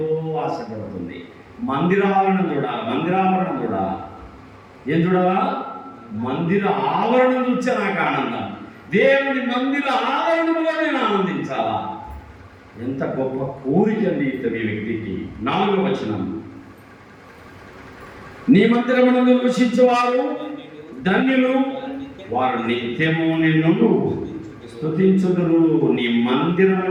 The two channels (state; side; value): identical; both; correlation 1.00